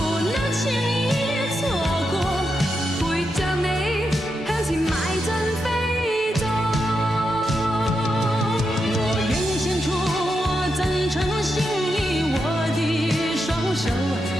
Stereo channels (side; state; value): both; normal; correlation 0.85